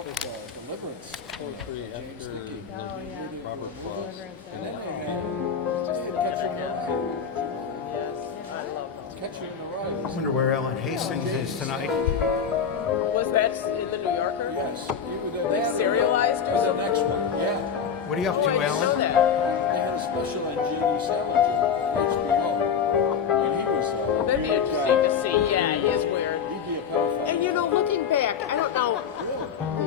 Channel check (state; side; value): quieter; right; 7.0 dB